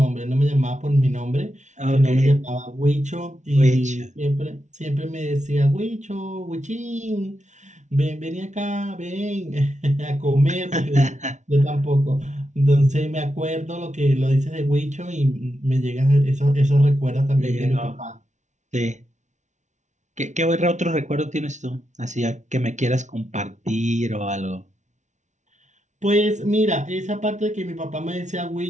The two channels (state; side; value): late; left; 0.35 ms